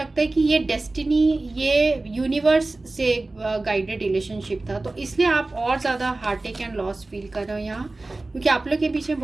है कि ये डेस्टिनी, ये यूनिवर्स से गाइडेड रिलेशनशिप था, तो इसलिए आप और ज़्यादा हार्टेक एंड लॉस फील कर रहे हो यहाँ, क्योंकि आप लोग के बीच में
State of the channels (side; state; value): left; quieter; 3.1 dB